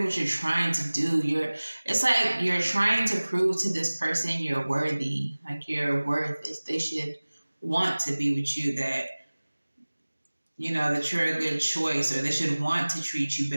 what you're trying to do. It's like you're trying to prove to this person you're worthy, like your worth is they should want to be with you, that that you're a good choice, or they should want to treat you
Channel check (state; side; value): inverted; both; correlation -1.00